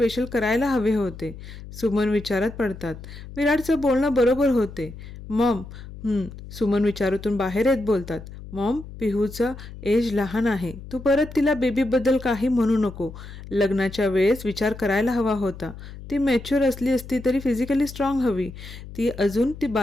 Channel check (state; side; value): noise; left; hum, 14 dB below the sound